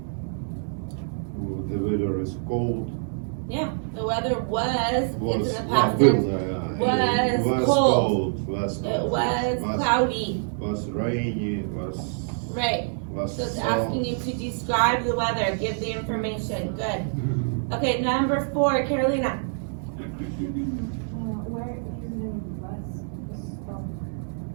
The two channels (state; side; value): silent; left; digital silence